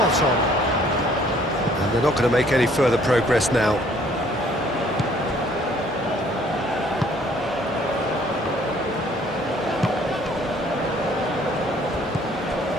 on. And they're not going to make any further progress now.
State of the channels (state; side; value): normal; both; correlation 0.60